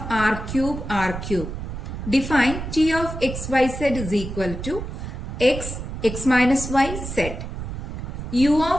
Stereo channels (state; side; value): noise; right; rumble, 7 dB below the sound